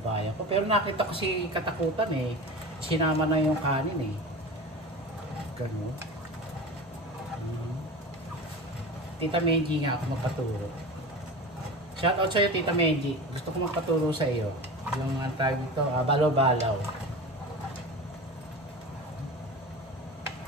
ko. Pero nakita ko si katakutan sinama na yung kanin Ganun. Tita Menji nga ako magpaturo. Shoutout sa'yo, Tita Menji. Gusto ko magpaturo sa iyo. Yung tawag dito, balaw-balaw.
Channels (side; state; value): both; normal; correlation 0.31